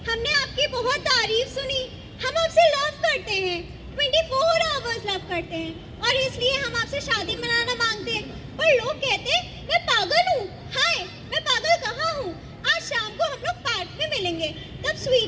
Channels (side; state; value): both; identical; correlation 1.00